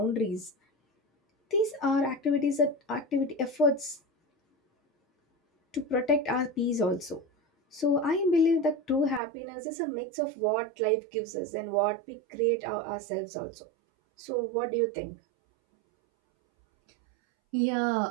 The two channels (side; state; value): left; drops out; at 9.2 s